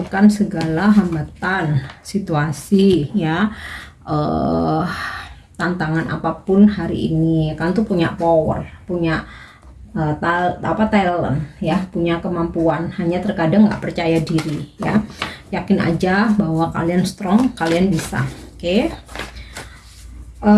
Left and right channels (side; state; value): both; identical; correlation 1.00